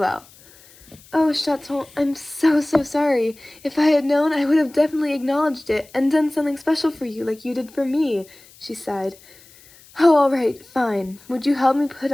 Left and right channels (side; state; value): left; noise; hiss, 25 dB below the sound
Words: "Oh, Chaton, I'm so sorry. If I had known, I would have definitely acknowledged it and done something special for you like you did for me," she sighed. "Oh, all right, fine. Would you help me put